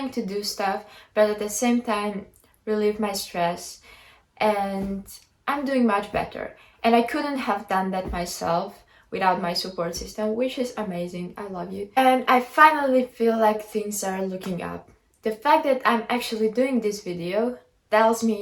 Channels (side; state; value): both; identical; correlation 1.00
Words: to do stuff, but at the same time relieve my stress, and I'm doing much better. And I couldn't have done that myself without my support system, which is amazing. I love you. And I finally feel like things are looking up. The fact that I'm actually doing this video tells